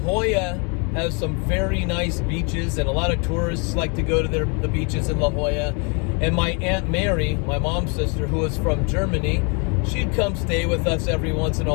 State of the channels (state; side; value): quieter; right; 34.4 dB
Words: has some very nice beaches, and a lot of tourists like to go to the beaches in La Jolla. And my Aunt Mary, my mom's sister, who was from Germany, she'd come stay with us every once in